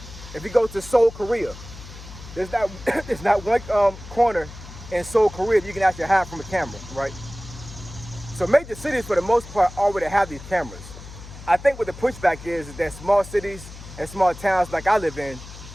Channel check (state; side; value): noise; left; hum, 15 dB below the sound